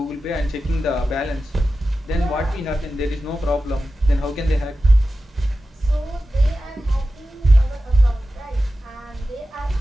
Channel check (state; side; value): normal; both; correlation 0.93